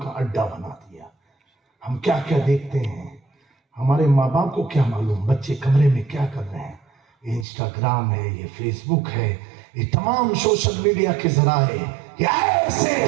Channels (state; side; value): drops out; left; at 7.5 s